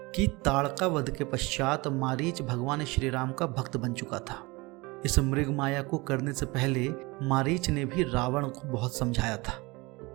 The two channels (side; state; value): left; quieter; 24.1 dB